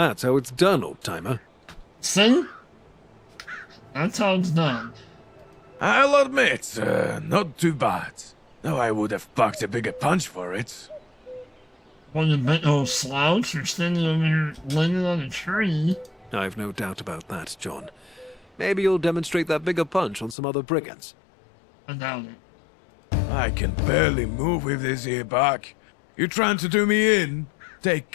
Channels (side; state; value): right; drops out; at 20.4 s